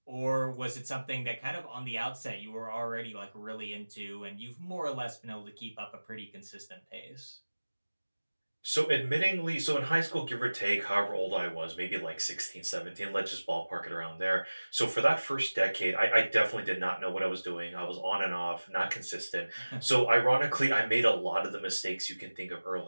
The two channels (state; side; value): inverted; both; correlation -1.00